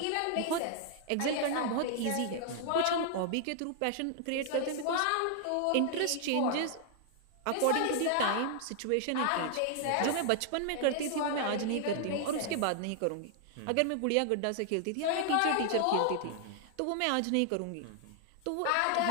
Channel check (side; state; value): both; different; correlation 0.00